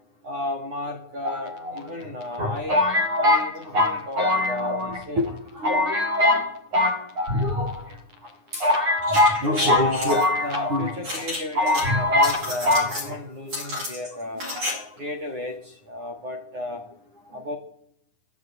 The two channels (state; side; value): late; left; 9.7 ms